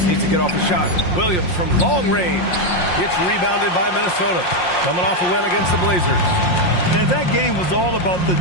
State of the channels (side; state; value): right; late; 5.6 ms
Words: needs to get off a shot. Williams from long range. It's rebounded by Minnesota. Coming off a win against the Blazers. And that game was all about the